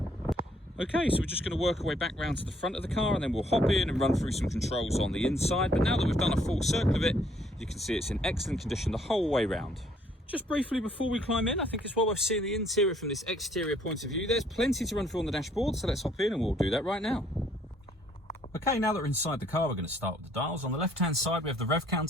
Okay, so we're just going to work our way back round to the front of the car, and then we'll hop in and run through some controls on the inside. But now that we've done a full circle of it, you can see it's in excellent condition the whole way round. Just briefly before we climb in, I think it's well worth seeing the interior from this exterior point of view. There's plenty to run through on the dashboard, so let's hop in and we'll do that right now. Okay, now that we're inside the car, we're going to start with the dials. On the left-hand side, we have the rev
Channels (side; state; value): both; normal; correlation 0.65